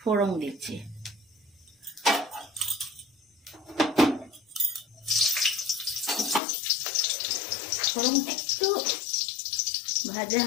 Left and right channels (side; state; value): right; drops out; at 6.4 s